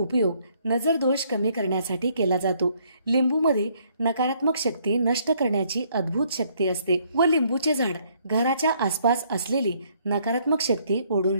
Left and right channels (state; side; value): inverted; both; correlation -0.67